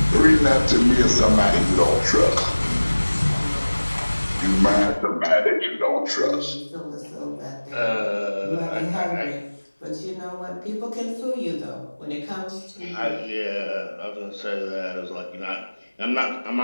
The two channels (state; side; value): inverted; both; correlation -1.00